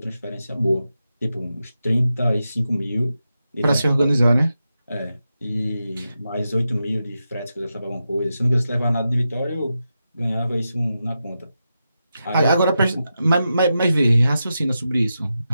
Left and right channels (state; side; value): inverted; both; correlation -0.89